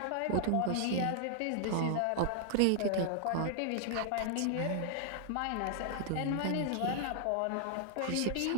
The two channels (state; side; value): different; both; correlation -0.01